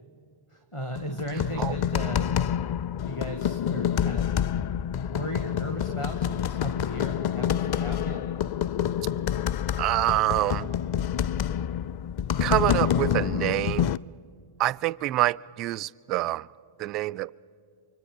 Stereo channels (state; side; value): late; right; 1.1 ms